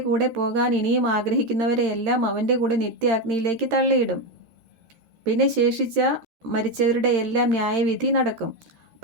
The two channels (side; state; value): left; late; 13 ms